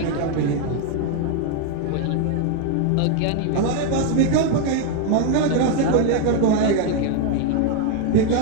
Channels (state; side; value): different; both; correlation 0.01